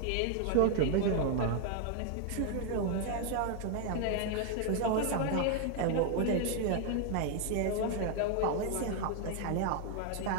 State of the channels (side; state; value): both; different; correlation 0.00